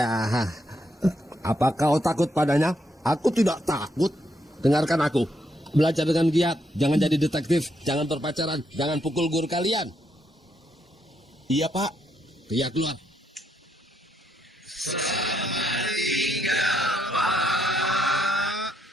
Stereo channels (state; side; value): normal; both; correlation 0.77